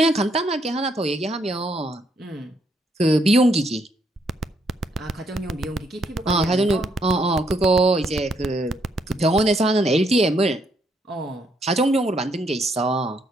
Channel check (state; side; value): normal; both; correlation 0.73